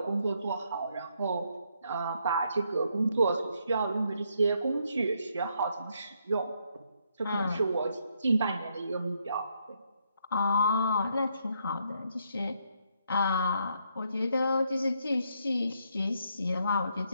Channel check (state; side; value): inverted; both; correlation -0.74